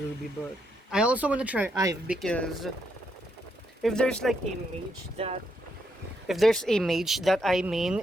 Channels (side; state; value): both; normal; correlation 0.78